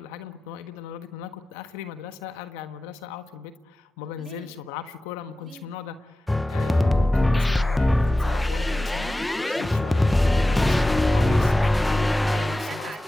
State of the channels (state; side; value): normal; both; correlation 0.95